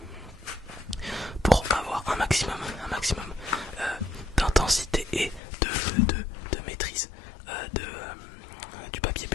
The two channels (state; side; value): drops out; right; at 5.4 s